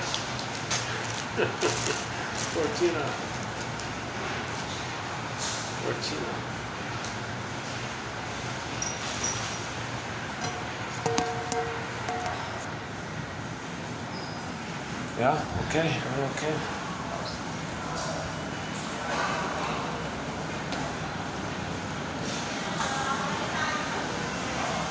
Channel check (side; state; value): both; identical; correlation 1.00